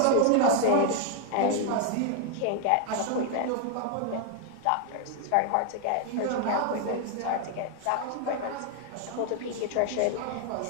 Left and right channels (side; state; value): both; different; correlation 0.00